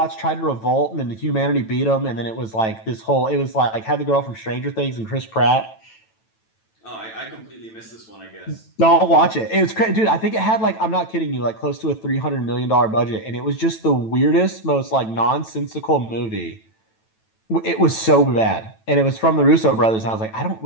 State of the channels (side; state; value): right; late; 9.1 ms